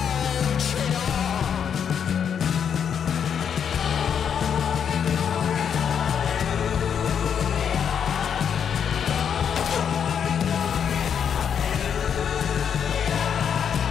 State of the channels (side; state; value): right; quieter; 7.8 dB